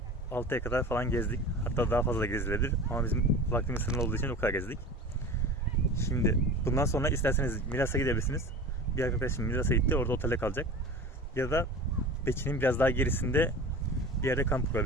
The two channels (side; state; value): both; normal; correlation 0.35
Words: 6'ya kadar falan gezdik. Hatta daha fazla gezilebilir. Ama bizim vaktimiz sınırlı olduğu için o kadar gezdik. Şimdi bundan sonra isterseniz Milas'a gidebilirsiniz. Bir arkadaşım Milas'a gitti. Orada otelde kalacak. Ya da Beçin'in biraz daha gerisinde bir yerde kamp